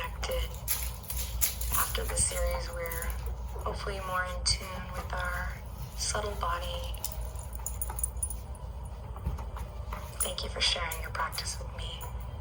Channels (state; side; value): identical; both; correlation 1.00